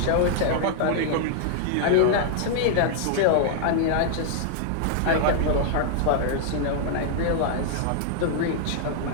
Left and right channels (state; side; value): different; both; correlation -0.01